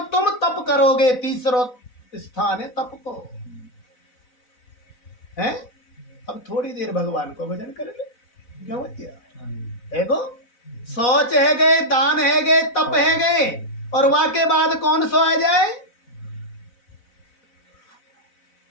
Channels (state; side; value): late; right; 4.0 ms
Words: तुम तप करोगे। तीसरो स्थान है तप को, है? अब थोड़ी देर भगवान को भजन कर ले, क्यों भैया? है गो सोच है गए, दान है गए, तप है गए, और वहां के बाद कौन सो आ जाए?